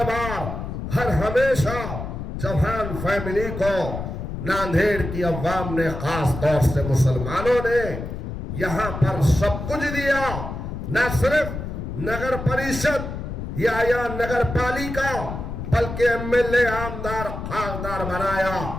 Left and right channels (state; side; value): noise; left; rumble, 6 dB below the sound